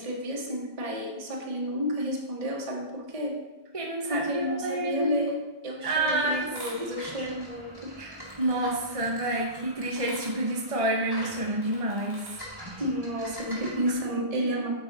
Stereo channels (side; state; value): left; late; 1.5 ms